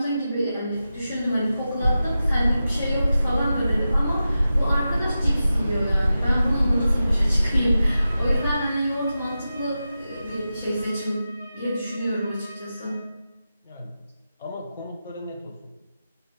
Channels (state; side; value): inverted; both; correlation -0.92